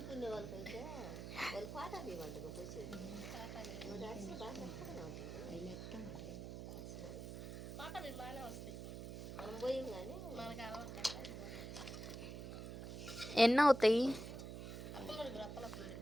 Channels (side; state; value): right; noise; hum, 7 dB below the sound